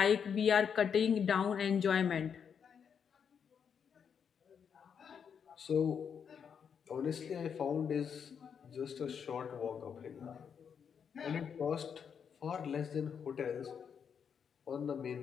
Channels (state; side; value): quieter; right; 7.2 dB